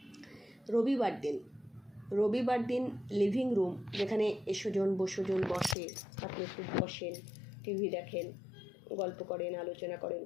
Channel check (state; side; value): drops out; right; at 5.8 s